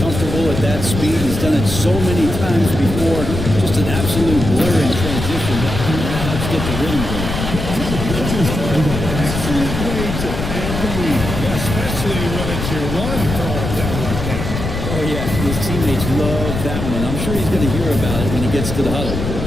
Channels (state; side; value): noise; left; rumble, 4 dB below the sound